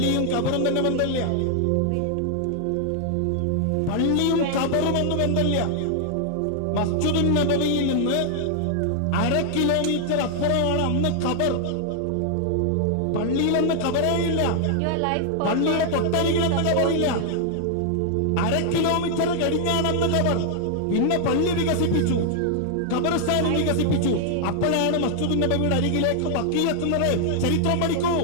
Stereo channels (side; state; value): both; different; correlation 0.00